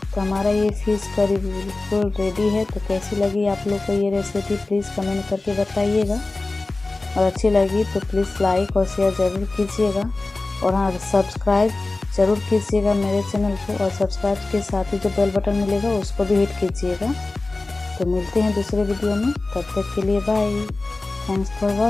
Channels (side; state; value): right; quieter; 3.3 dB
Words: तो हमारा ये फिश करी बिल्कुल रेडी है। तो कैसी लगी आप लोग को ये रेसिपी प्लीज़ कमेंट करके बताइएगा, और अच्छी लगी तो प्लीज़ लाइक और शेयर ज़रूर कीजिएगा, और हाँ सब्सक्राइब ज़रूर कीजिएगा मेरे चैनल को, और सब्सक्राइब के साथ ही जो बेल बटन मिलेगा उसको भी हिट कीजिएगा। तो मिलते हैं दूसरे वीडियो में, तब तक के लिए बाय। Thanks for